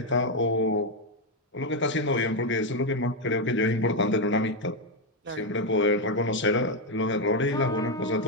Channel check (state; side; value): normal; both; correlation 0.03